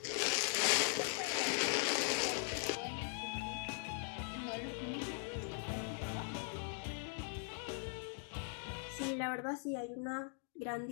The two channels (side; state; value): right; silent; 51 dB below the other